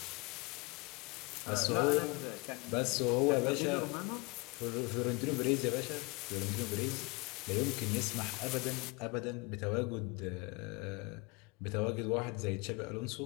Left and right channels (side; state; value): right; quieter; 27.9 dB